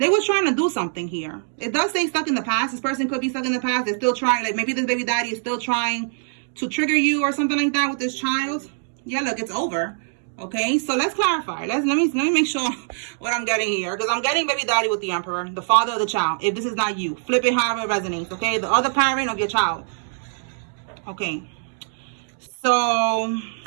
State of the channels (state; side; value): silent; left; 63 dB below the other